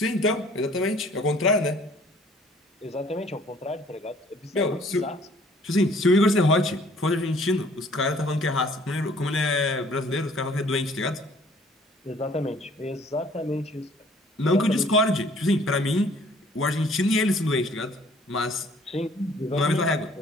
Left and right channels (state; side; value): normal; both; correlation 0.57